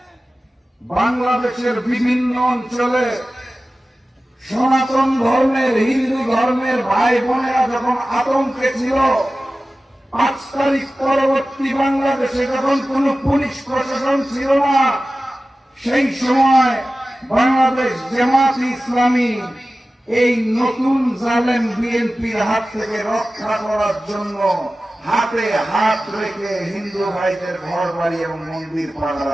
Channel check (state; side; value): normal; both; correlation 0.95